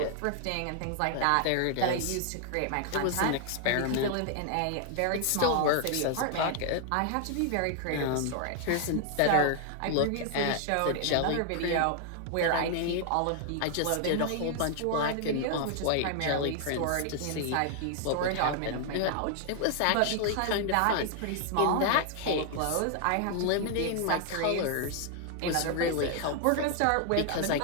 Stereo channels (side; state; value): both; different; correlation 0.00